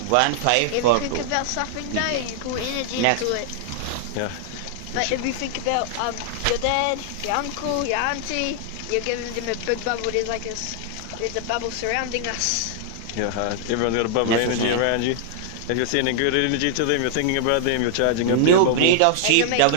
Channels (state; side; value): different; both; correlation -0.01